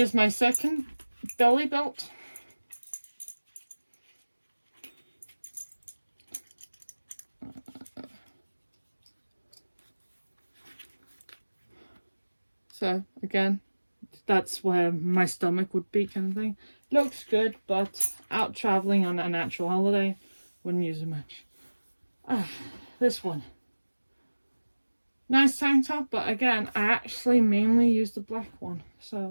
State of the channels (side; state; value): both; inverted; correlation -1.00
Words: my second belly belt. So again, that's where my stomach would be, kind of thing. Looks good, but out traveling on a natural holiday, wouldn't use it much. This one. Nice tank top, but again, I actually mainly use the black one.